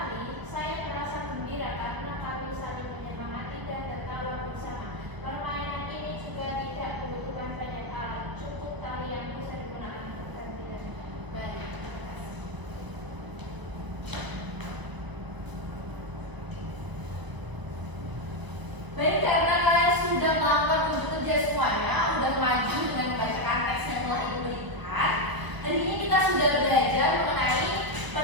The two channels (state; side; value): late; left; 1.0 ms